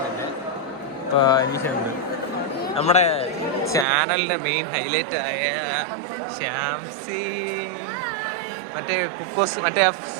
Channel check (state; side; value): drops out; left; at 3.9 s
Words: അനീഷ ഉണ്ട്. നമ്മുടെ ചാനലിന്റെ മെയിൻ ഹൈലൈറ്റ് ആയ ശ്യാംസി, മറ്റേ കുക്കോസ്, മറ്റേ